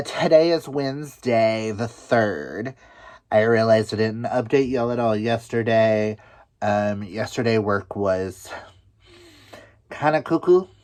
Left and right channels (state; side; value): identical; both; correlation 1.00